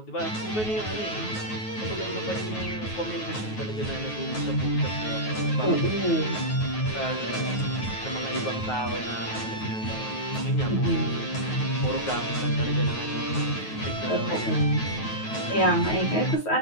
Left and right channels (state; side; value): late; right; 9.3 ms